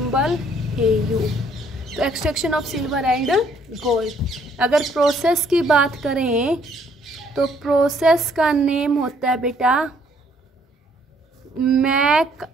Au। तो extraction of silver and gold, अगर प्रोसेस की बात करें तो प्रोसेस का नेम होता है बेटा मैक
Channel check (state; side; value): normal; both; correlation 0.64